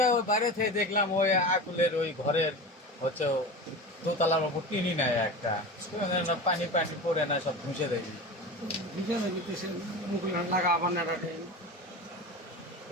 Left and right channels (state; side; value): normal; both; correlation 0.29